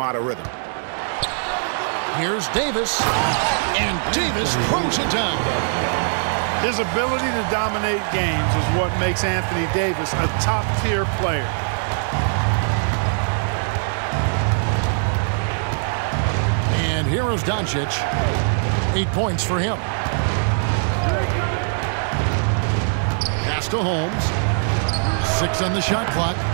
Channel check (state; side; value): silent; left; digital silence